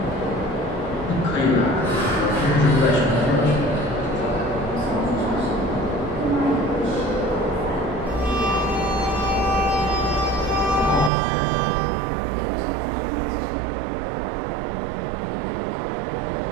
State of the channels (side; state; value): left; drops out; at 11.1 s